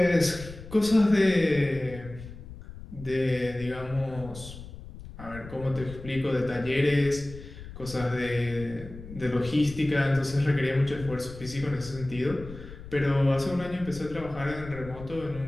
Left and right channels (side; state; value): left; noise; rumble, 14 dB below the sound